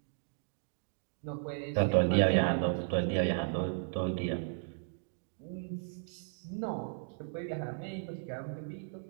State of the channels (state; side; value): silent; left; digital silence